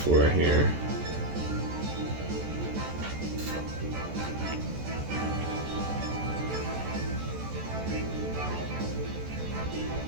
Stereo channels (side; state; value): left; late; 14 ms